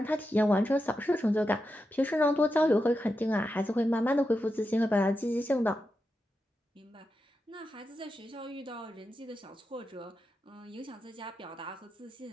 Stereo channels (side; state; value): both; normal; correlation 0.88